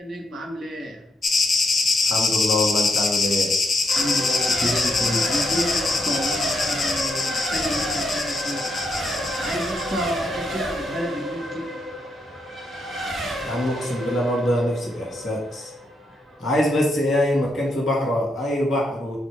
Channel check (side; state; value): both; normal; correlation 0.80